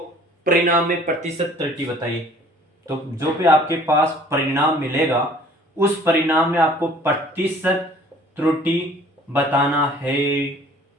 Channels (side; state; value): both; normal; correlation 0.53